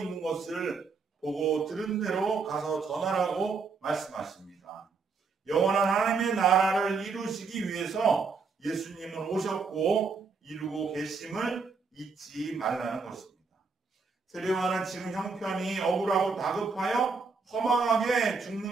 것을 보고 들은 대로 가서 전하라고 말씀하십니다. 영원한 하나님의 나라를 이루시기 위해서 예수님은 오셨고 이루고 계심을 잊지 말라는 것입니다. 세례 요한은 지금 형편이 억울하고 다급하여 허망하게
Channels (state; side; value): quieter; left; 4.8 dB